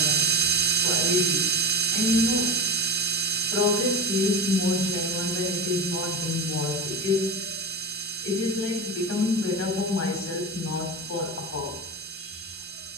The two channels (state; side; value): normal; both; correlation 0.23